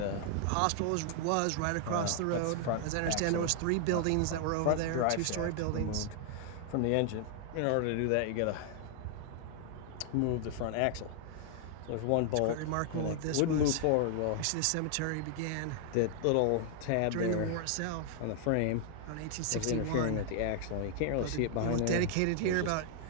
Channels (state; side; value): different; both; correlation 0.00